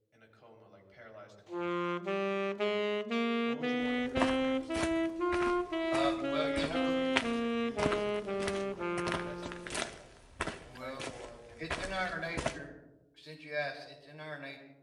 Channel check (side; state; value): both; identical; correlation 1.00